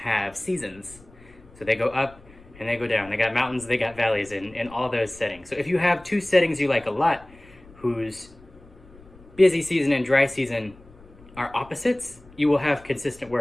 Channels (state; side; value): noise; left; rumble, 24 dB below the sound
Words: seasons. So they go up and they go down. They got mountains, they got valleys in all those settings. So if you have two settings you like a lot, whose busy season and dry season are opposites, you will have consistent